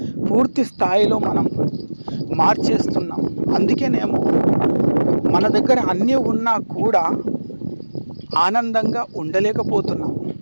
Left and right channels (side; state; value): both; inverted; correlation -1.00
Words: పూర్తి స్థాయిలో మనం మార్చేస్తున్నాం. అందుకేనేమో మన దగ్గర అన్నీ ఉన్నా కూడా ఆనందంగా ఉండలేకపోతున్నాం.